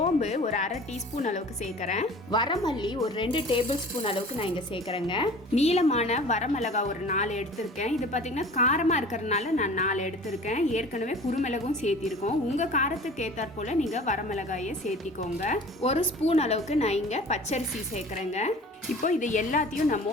ஒரு 1/2 டீஸ்பூன் அளவுக்கு சேர்க்குறேன். வரமல்லி ஒரு 2 டேபிள் ஸ்பூன் அளவுக்கு நான் இங்கே சேர்க்குறேங்க. நீளமான வரமிளகா ஒரு 4 எடுத்திருக்கேன். இது பார்த்தீங்கன்னா காரமாக இருக்கிறதுனால நான் 4 எடுத்திருக்கேன். ஏற்கனவே குருமிளகும் சேர்த்திருக்கோம். உங்கள் காரத்துக்கு ஏற்றாற் போல் நீங்கள் வரமிளகாயை சேர்த்திக்கோங்க. 1 ஸ்பூன் அளவுக்கு நான் இங்கே பச்சரிசி சேர்க்குறேங்க. இப்போ இது எல்லாத்தையும் நம்ம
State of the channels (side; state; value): both; normal; correlation 0.43